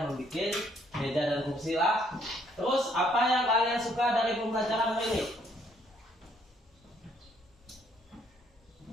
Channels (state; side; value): normal; both; correlation 0.67